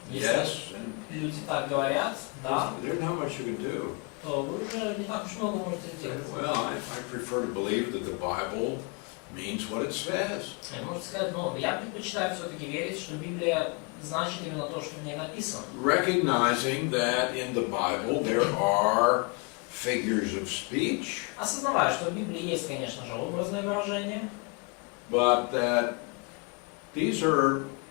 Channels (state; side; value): quieter; right; 32.3 dB